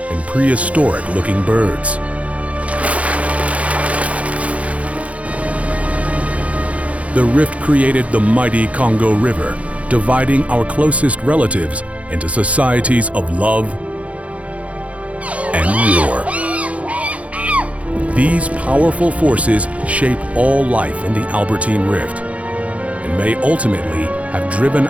and prehistoric-looking birds. The rift created the mighty Congo River, dividing our closest relatives into societies of love and war. These powerful forces shape all life in the Albertine Rift and may ultimately have driven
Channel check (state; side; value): late; left; 0.065 ms